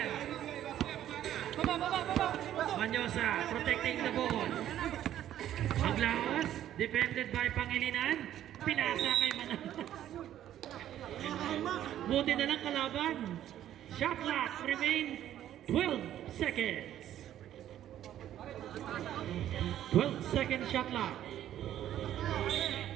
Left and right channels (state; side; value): quieter; left; 11.7 dB